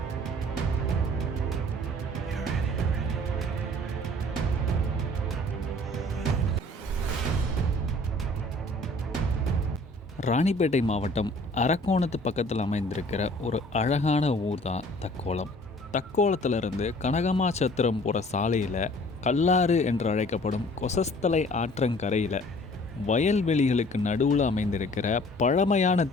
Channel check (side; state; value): both; normal; correlation 0.52